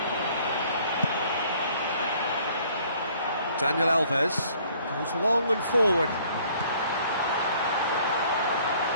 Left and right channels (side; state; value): both; inverted; correlation -0.59